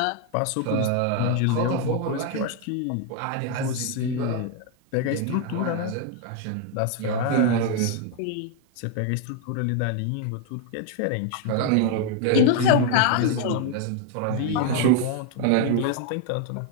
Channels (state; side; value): different; both; correlation 0.00